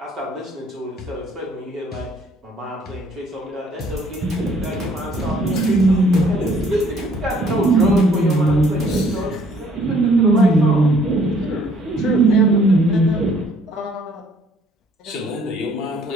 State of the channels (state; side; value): normal; both; correlation 0.61